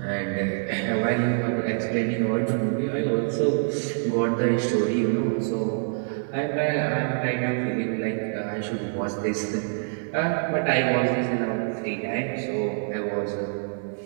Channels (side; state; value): left; silent; digital silence